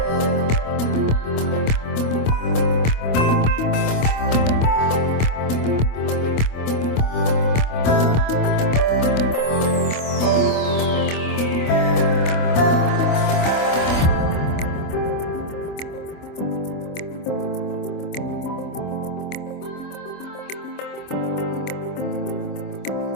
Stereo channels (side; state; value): right; late; 25 ms